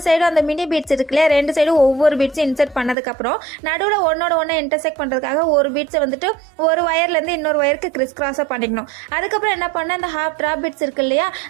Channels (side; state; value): left; drops out; at 3.0 s